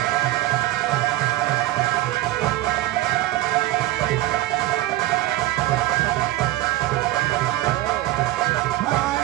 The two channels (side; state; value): left; quieter; 16.5 dB